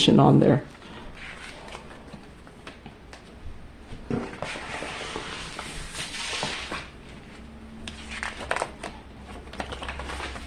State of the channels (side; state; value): both; identical; correlation 1.00